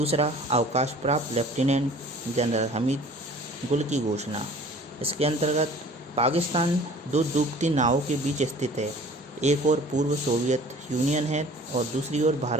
अवकाश प्राप्त लेफ्टिनेंट जनरल हमीद गुल की घोषणा। इसके अंतर्गत पाकिस्तान 2 डूबती नावों के बीच स्थित है। एक ओर पूर्व सोवियत यूनियन है और दूसरी ओर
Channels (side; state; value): both; normal; correlation 0.48